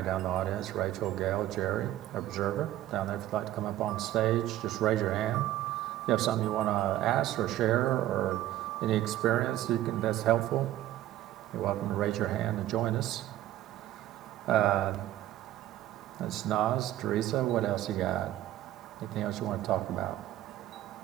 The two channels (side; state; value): left; quieter; 13.8 dB